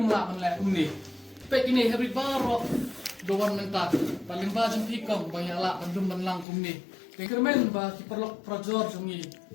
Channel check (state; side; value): drops out; right; at 6.5 s